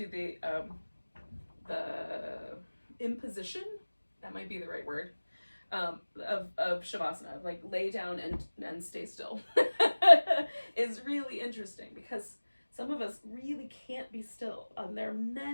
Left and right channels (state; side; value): inverted; both; correlation -1.00